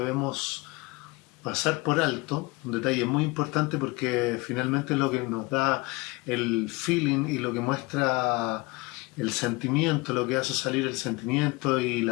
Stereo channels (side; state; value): right; quieter; 24.0 dB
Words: pasar por alto, un detalle muy importante porque finalmente es lo que nos da el feeling y lo que muestra el sentimiento, lo que hace salir el sentimiento y